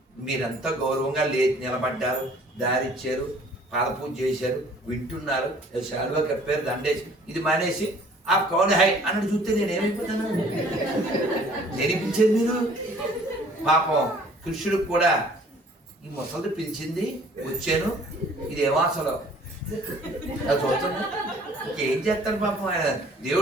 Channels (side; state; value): both; normal; correlation 0.54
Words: మీరంతా గౌరవంగా నిలబడ్డారు, దారిచ్చారు, పాదపూజ చేశారు, వింటున్నారు, శాలువా కప్పారు, దండేసి ఇది మానేసి ఆ కౌన్ హై అన్నట్టు చూస్తే నేనేమైపోతాను? నేనిపించేది మీరు. పాపం కృష్ణుడికి కూడా ఈ ముసలిది పిలిచింది, వచ్చాను, ఇదేమో అసలు అది చూస్తున్నా. ఇంకేం చేస్తాను పాపం, ఆయన